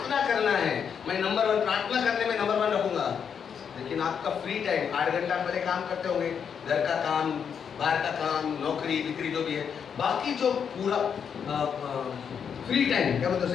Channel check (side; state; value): right; quieter; 7.3 dB